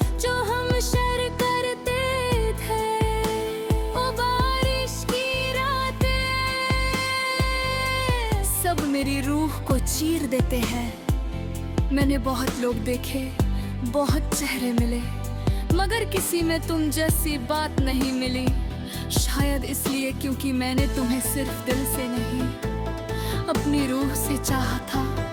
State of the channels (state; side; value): identical; both; correlation 1.00